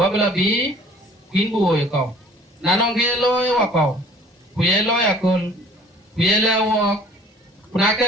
bi queen boy ko nanong ge loy wa ko kuye loy akol kuye la wo kuna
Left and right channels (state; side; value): normal; both; correlation 0.52